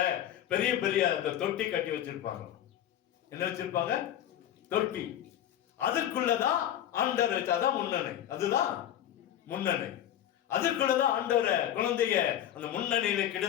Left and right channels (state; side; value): quieter; right; 11.3 dB